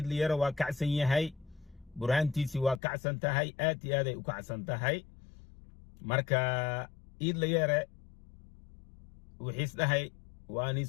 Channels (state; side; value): drops out; right; at 2.8 s